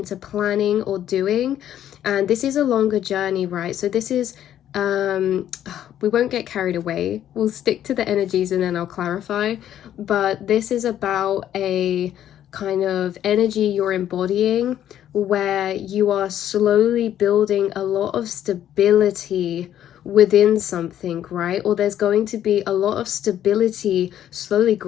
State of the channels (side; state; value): right; quieter; 11.1 dB